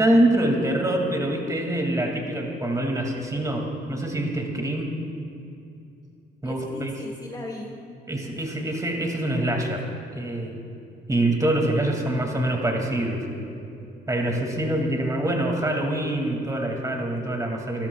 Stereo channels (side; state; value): both; normal; correlation 0.70